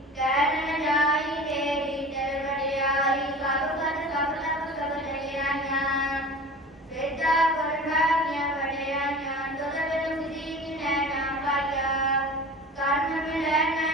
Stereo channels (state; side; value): normal; both; correlation 0.38